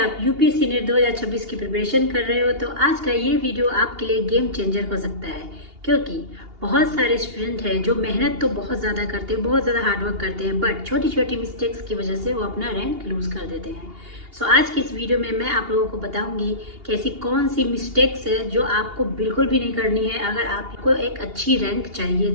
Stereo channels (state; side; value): late; left; 2.8 ms